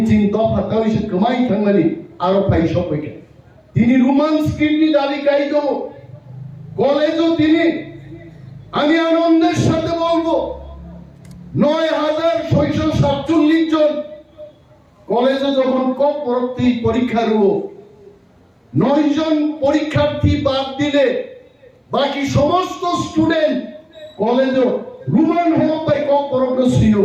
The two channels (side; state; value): both; identical; correlation 1.00